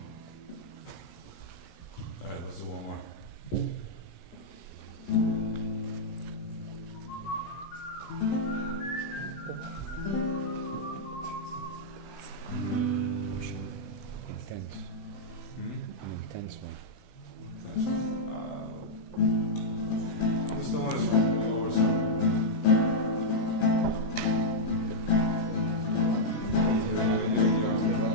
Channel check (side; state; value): right; late; 17 ms